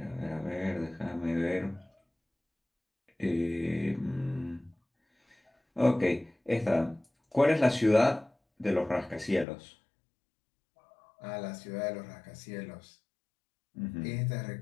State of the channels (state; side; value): drops out; right; at 9.5 s